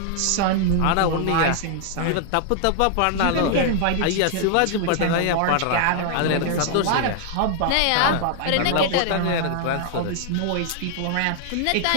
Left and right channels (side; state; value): both; different; correlation 0.00